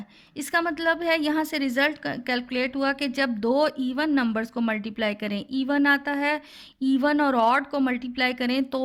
इसका मतलब है यहाँ से रिजल्ट कैलकुलेट हुआ कि जब दो इवन नंबर्स को मल्टीप्लाई करें इवन आता है, इवन और ऑड को मल्टीप्लाई करें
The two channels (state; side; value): identical; both; correlation 1.00